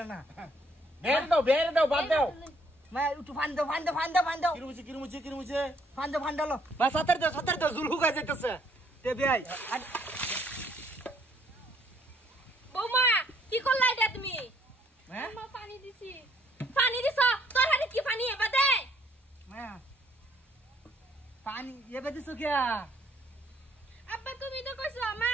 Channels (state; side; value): normal; both; correlation 0.66